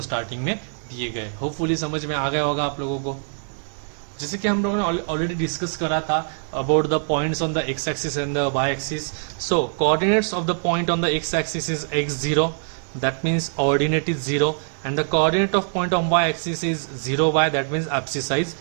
starting में दिए गए. Hopefully समझ में आ गया होगा आप लोगों को. जैसे कि हम लोगों ने ऑलरेडी डिस्कस करा था about the points on the X axis and the Y axis. So coordinates of the point on the X axis is x0, that means ordinate is 0, and the coordinate of point on y axis is 0y, that means abscissa is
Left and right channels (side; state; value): left; silent; 57 dB below the other